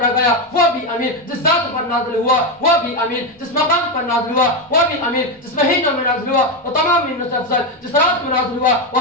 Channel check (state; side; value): normal; both; correlation 0.10